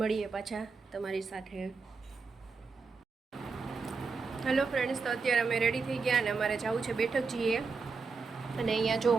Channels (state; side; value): quieter; left; 4.7 dB